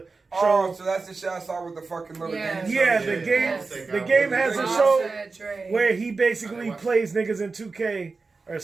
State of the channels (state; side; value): quieter; left; 4.1 dB